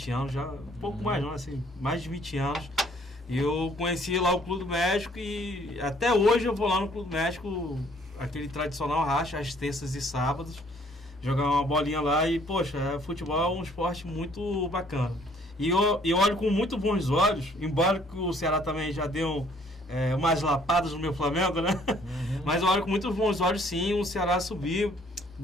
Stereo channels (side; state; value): both; normal; correlation 0.61